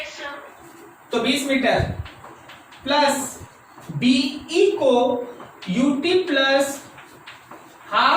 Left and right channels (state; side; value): identical; both; correlation 1.00